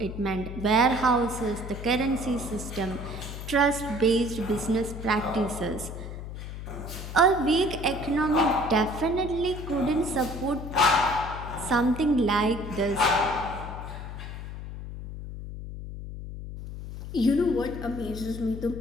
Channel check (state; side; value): noise; left; hum, 9 dB below the sound